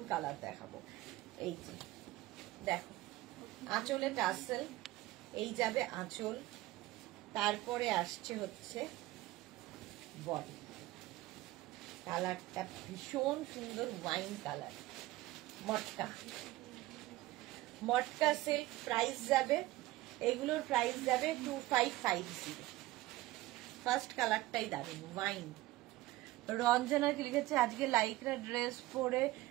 কালার দেখাবো। এই যে দেখো, আঁচলে টাসেল, এই যাবে আঁচল, তারপরে আসছে হচ্ছে বডি। কালারটা ভীষণ সুন্দর, ওয়াইন কালার, মটকা, মটকা সিল্ক। প্রাইস যাবে, এগুলোর প্রাইস যাবে 2550। ফার্স্ট কালারটাই দারুণ, ওয়াইন। রঞ্জনা কি লিখেছে, আজকে লাইকরা ড্রেস পরে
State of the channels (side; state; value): left; quieter; 17.8 dB